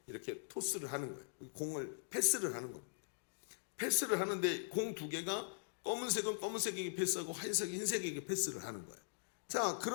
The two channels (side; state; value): right; silent; digital silence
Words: 이렇게 토스를 하는 거예요. 공을 패스를 하는 겁니다. 패스를 하는데 공 2개가 검은색은 검은색에게 패스하고 흰색은 흰색에게 패스를 하는 거예요. 자,